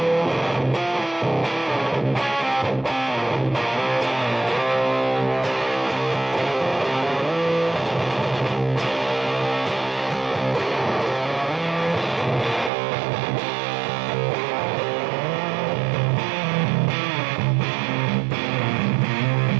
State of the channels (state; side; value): drops out; left; at 12.7 s